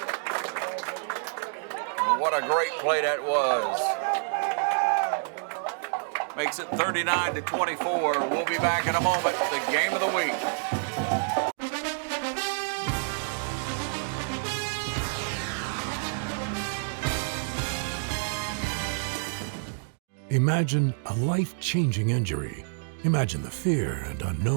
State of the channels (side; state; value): left; silent; digital silence